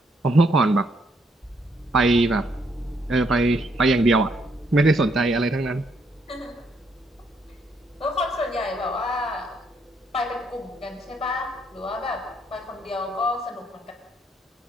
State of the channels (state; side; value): normal; both; correlation 0.73